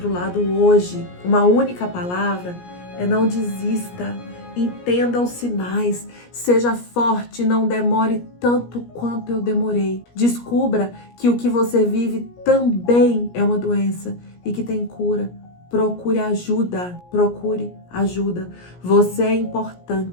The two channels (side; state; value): right; late; 17 ms